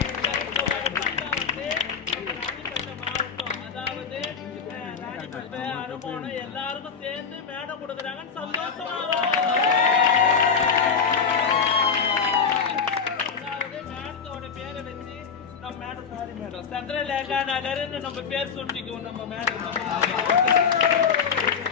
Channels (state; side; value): quieter; right; 6.2 dB